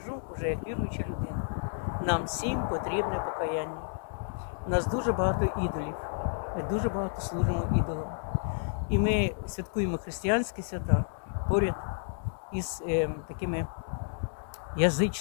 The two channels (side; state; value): right; silent; digital silence